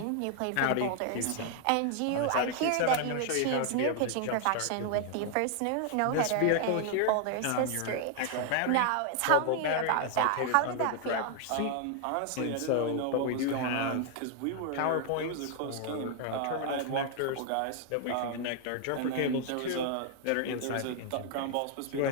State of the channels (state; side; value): different; both; correlation 0.00